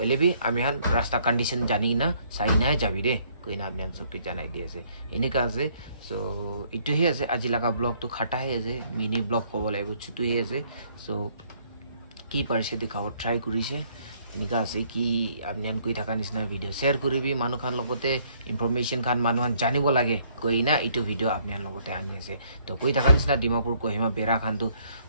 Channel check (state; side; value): inverted; both; correlation -0.65